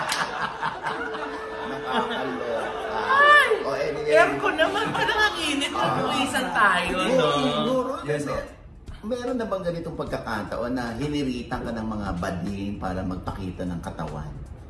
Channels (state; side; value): identical; both; correlation 1.00